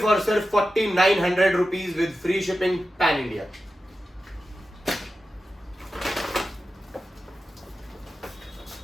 और सिर्फ ₹4,900 with free shipping pan India.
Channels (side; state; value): both; normal; correlation 0.92